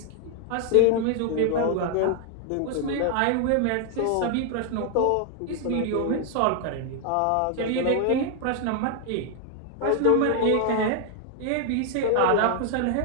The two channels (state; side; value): different; both; correlation 0.00